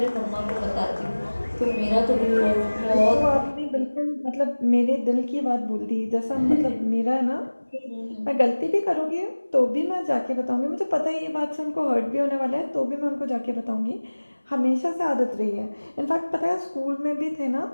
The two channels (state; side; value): inverted; both; correlation -1.00